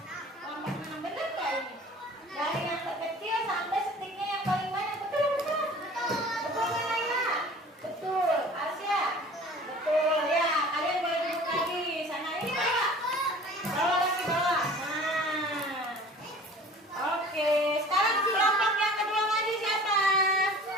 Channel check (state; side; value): normal; both; correlation 0.45